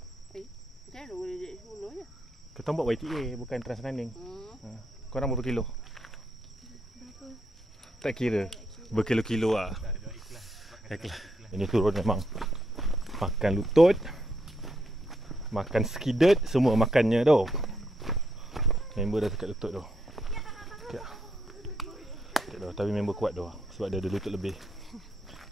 mana boleh jadi 10 je? Kita buat YTA bukan Transrunning. Korang berapa kilo? Tak kira. Berkilo-kilo lah. Ikhlas. Ini turun memang. Makan lutut, makan skidet, semua makannya tu. Member dah dekat lutut tu. Okay. Tapi member kuat tu sebab dia ada lutut lebih.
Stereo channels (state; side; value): normal; both; correlation 0.78